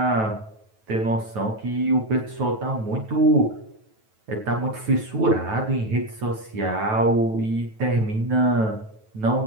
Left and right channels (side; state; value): left; late; 9.2 ms